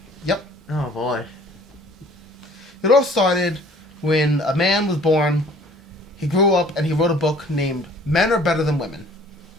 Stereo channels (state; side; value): normal; both; correlation 0.53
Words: Oh boy. It all started when a man was born. He grew up and he wrote a book named "Men Are Better Than Women."